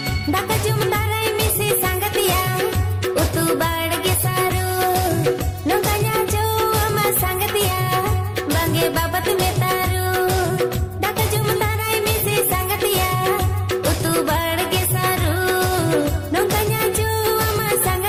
Daka jumtarai misi sanggatia utu badge saru nungkanya cuma sanggatia bangge babat metaru Daka jumtarai misi sanggatia utu badge saru nungkanya cuma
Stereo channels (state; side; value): identical; both; correlation 1.00